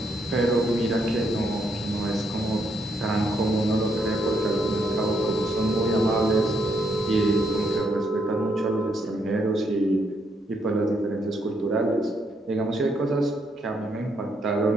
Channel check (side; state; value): both; normal; correlation 0.76